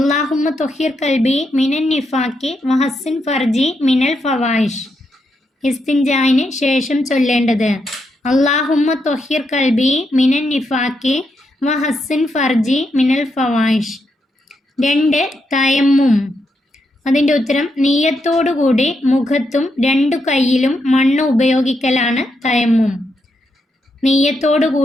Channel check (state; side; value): normal; both; correlation 0.81